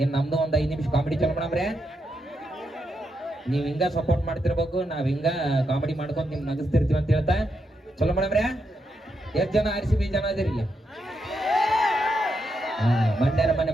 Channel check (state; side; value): normal; both; correlation 0.82